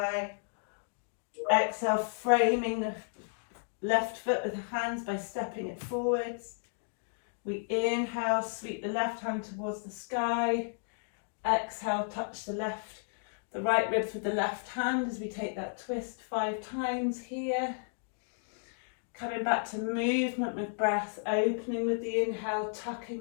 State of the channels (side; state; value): right; silent; digital silence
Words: Exhale, framing the left foot with the hands by stepping it forwards. We inhale, sweep the left hand towards the sky. Exhale, touch the right ribs with the left hand as we take that twist 5 times here. Coming back to movement with breath, opening with the inhale,